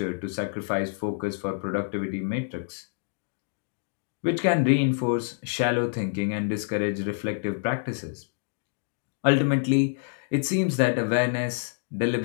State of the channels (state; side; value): silent; right; digital silence